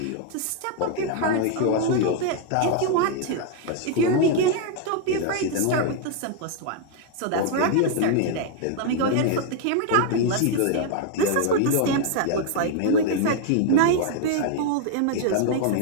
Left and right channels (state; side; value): different; both; correlation 0.00